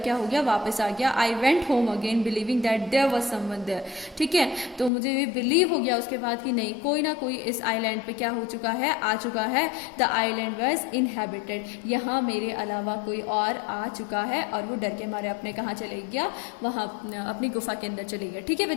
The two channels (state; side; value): drops out; right; at 4.9 s